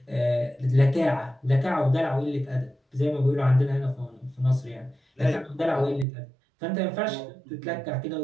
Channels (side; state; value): left; drops out; at 6.1 s